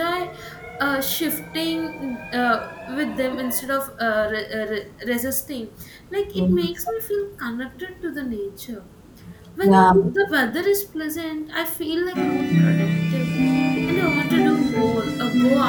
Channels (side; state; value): both; identical; correlation 1.00